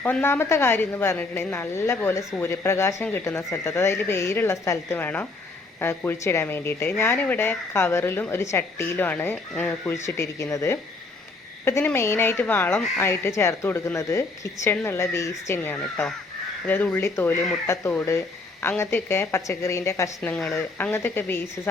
ഒന്നാമത്തെ കാര്യം എന്ന് പറഞ്ഞിട്ടുണ്ടെങ്കിൽ നല്ല പോലെ സൂര്യപ്രകാശം കിട്ടുന്ന സ്ഥലത്ത്, അതായത് വെയിലുള്ള സ്ഥലത്ത് വേണം കുഴിച്ചിടാൻ വേണ്ടിയിട്ട്. ഞാനിവിടെ കവറിലും ഒരു ചട്ടിയിലുമാണ് കുഴിച്ചിട്ടിരിക്കുന്നത്. ഇപ്പം ഇതിന് മെയിനായിട്ട് വളം ആയിട്ട് ചേർത്ത് കൊടുക്കുന്നത് കിച്ചണിൽ നിന്നുള്ള വേസ്റ്റ് തന്നെയാണ് കേട്ടോ. അതായത് ഉള്ളിത്തോല്, മുട്ടത്തോട്, അങ്ങനത്തെയൊക്കെ പച്ചക്കറീൻ്റെ കഷ്ണങ്ങൾ, അങ്ങനത്തെയൊക്കെ വേസ്റ്റ്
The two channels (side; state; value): right; quieter; 3.5 dB